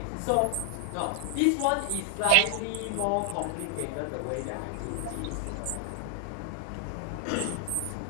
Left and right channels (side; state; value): both; different; correlation 0.00